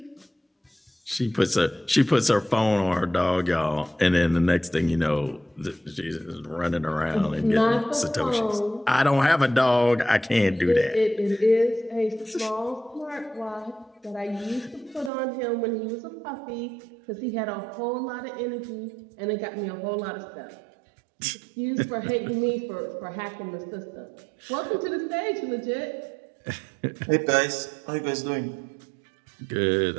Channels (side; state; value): left; drops out; at 15.1 s